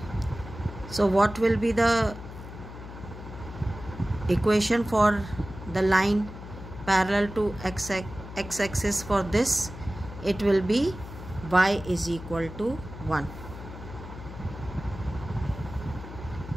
So what will be the equation for the line parallel to x-axis for this? It will be y is equal to 1.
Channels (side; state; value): left; noise; hum, 12 dB below the sound